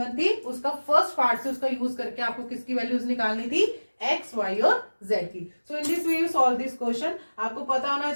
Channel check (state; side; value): inverted; both; correlation -1.00